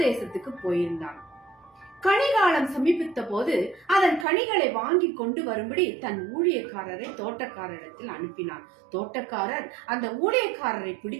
போயிருந்தான். கனிகாலம் சமீபித்த போது அதன் கனிகளை வாங்கி கொண்டு வரும்படி தன் ஊழியக்காரரை தோட்டக்காரரிடத்தில் அனுப்பினான். தோட்டக்காரர் அந்த ஊழியக்காரரை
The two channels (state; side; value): drops out; left; at 4.2 s